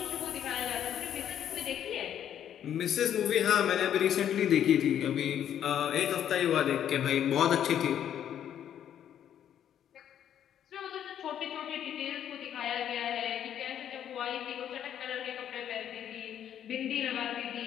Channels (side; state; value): right; quieter; 10.0 dB